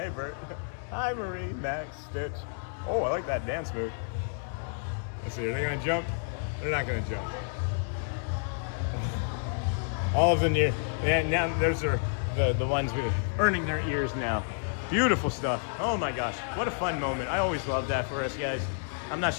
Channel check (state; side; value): silent; right; digital silence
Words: Bert. Hi, Marie, Max, Stitch. Oh, I like that dance move. Let's see, are they gonna jump? They're not gonna jump. All of them here. And now those are the ones burning their ears now. Beautiful stuff. Oh my gosh, what a fun moment. I always love that for us guys. I'm not